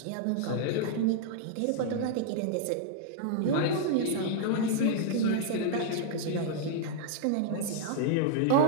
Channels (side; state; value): both; different; correlation -0.01